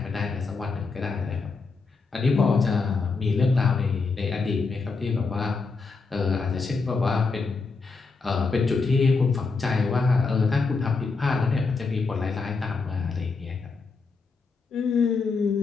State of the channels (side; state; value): right; quieter; 4.4 dB